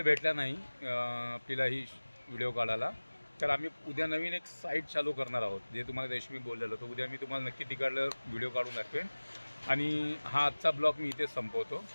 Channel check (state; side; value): inverted; both; correlation -1.00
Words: भेटला नाही आपल्याला ही व्हिडिओ काढायला. तर आम्ही उद्या नवीन एक साईट चालू करणार आहोत, जे तुम्हाला रेशमी बोललेलं. तर उद्या मी तुम्हाला नक्की तिकडलं व्हिडिओ काढून दाखवेन. आणि हा आजचा ब्लॉग मी इथेच संपवतो.